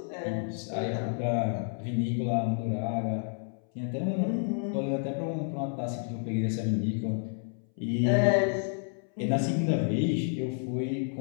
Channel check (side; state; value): right; silent; 58 dB below the other